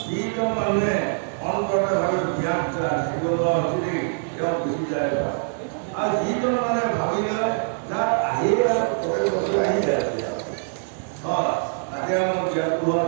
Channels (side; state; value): left; silent; 63 dB below the other